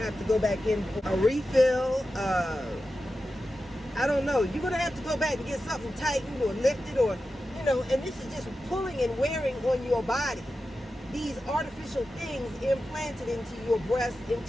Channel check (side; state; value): both; normal; correlation 0.92